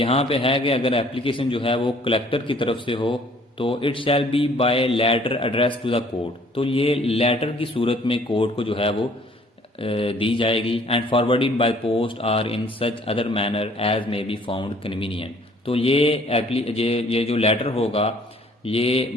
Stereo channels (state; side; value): normal; both; correlation 0.58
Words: پہ ہے کہ اگر ایپلیکیشن جو ہے وہ کلیکٹر کی طرف سے ہو تو it shall be by letter address to the court, تو یہ لیٹر کی صورت میں کورٹ کو جو ہے وہ دی جائے گی. And forwarded by post or in such other manner as may be found convenient, تو یہ جو لیٹر ہوگا یہ